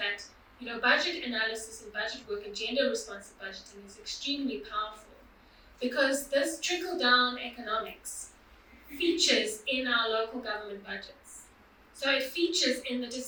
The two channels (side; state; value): both; identical; correlation 1.00